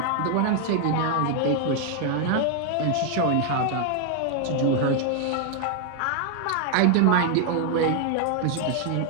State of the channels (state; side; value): different; both; correlation 0.00